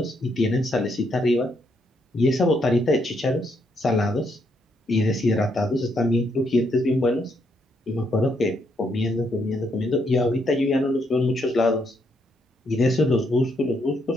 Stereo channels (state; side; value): normal; both; correlation 0.75